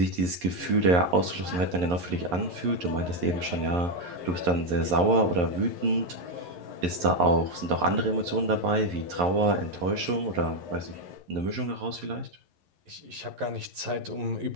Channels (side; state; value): left; late; 11 ms